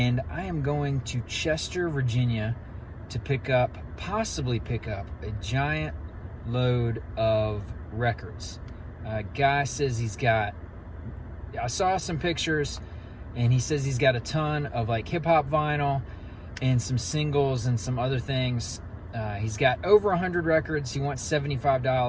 I am going to Chester, Virginia to possibly pick up a giant load of records. Guy says I saw some pictures, and he says he's got a ton of like hip-hop vinyl and some singles and some other things. He's got over 100 records. He wants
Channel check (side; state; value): both; identical; correlation 1.00